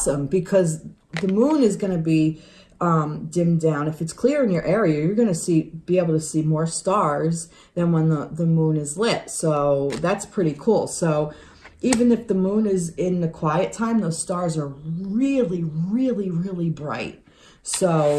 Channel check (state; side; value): identical; both; correlation 1.00